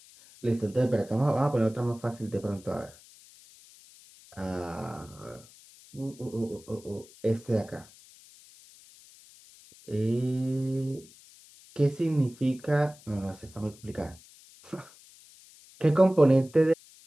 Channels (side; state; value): left; noise; hiss, 23 dB below the sound